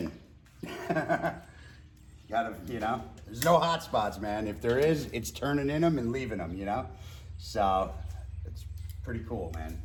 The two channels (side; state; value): both; identical; correlation 1.00